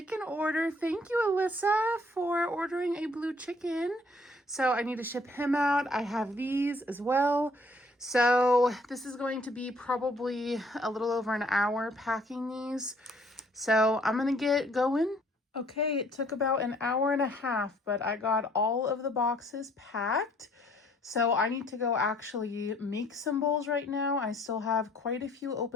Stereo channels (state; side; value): normal; both; correlation 0.61